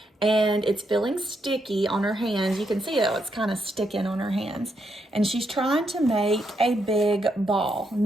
and it's feeling sticky on her hands. You can see it's kind of sticking on her hands. And she's trying to make a big ball.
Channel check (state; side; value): normal; both; correlation 0.79